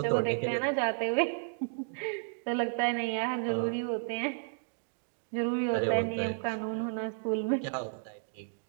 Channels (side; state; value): left; silent; digital silence